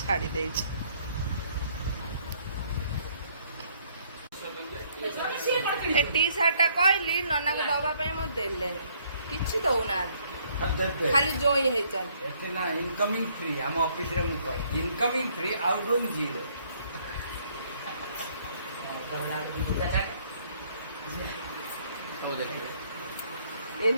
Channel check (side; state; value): both; inverted; correlation -0.65